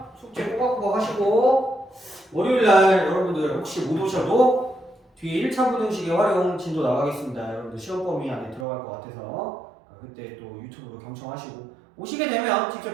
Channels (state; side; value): drops out; left; at 8.7 s